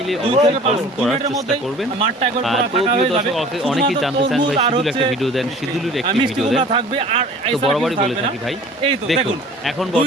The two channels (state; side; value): normal; both; correlation 0.46